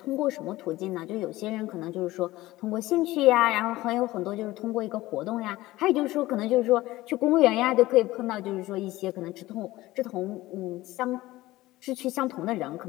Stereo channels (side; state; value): right; quieter; 17.7 dB